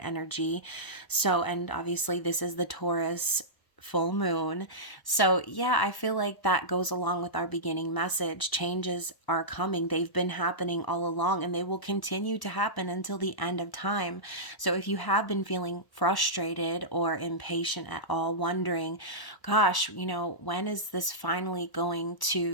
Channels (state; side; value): late; right; 1.1 ms